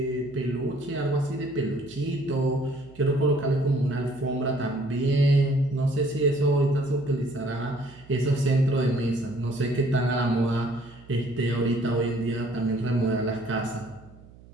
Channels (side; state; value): right; noise; hum, 22 dB below the sound